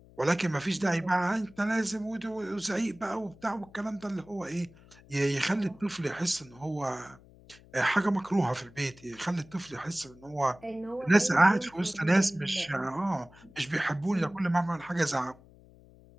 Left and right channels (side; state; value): left; noise; hum, 24 dB below the sound